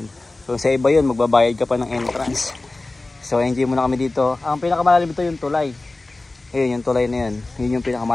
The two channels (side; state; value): right; quieter; 3.1 dB